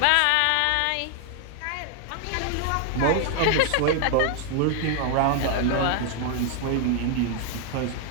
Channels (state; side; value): different; both; correlation 0.00